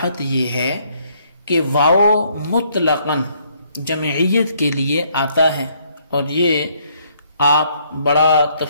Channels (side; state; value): both; inverted; correlation -0.68